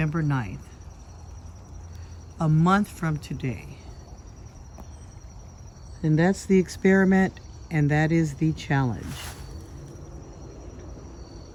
9th. A month from today. And that's the experiment, and that is the challenge.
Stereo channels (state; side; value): identical; both; correlation 1.00